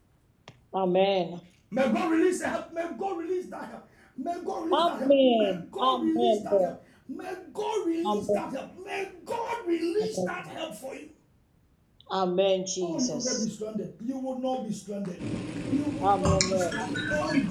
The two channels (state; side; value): identical; both; correlation 1.00